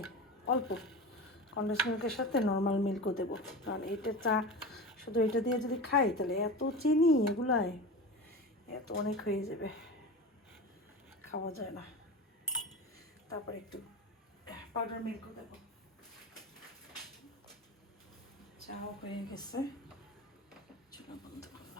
অল্প কন্ডেন্স মিল্কের সাথে নর্মাল মিল্কও দেবো, কারণ এইটা চা শুধু এটা দিয়ে যদি খাই তাহলে এত চিনি এগুলায় এত অনেক হয়ে যাবে, খাওয়া যায় না। তারপরে একটু পাউডার মিল্কও দেবো। চাও হয়ে গেছে, চুলা বন্ধ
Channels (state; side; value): normal; both; correlation 0.29